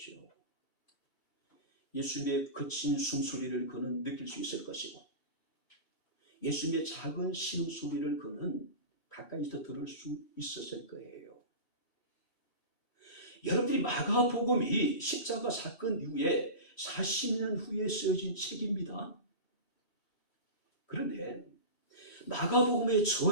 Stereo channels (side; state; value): right; late; 6.7 ms